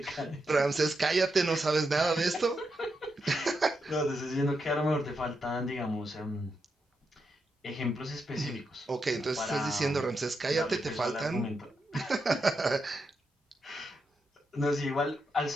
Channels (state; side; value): normal; both; correlation 0.84